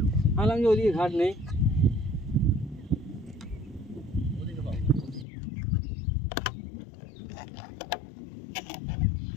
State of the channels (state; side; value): drops out; right; at 5.2 s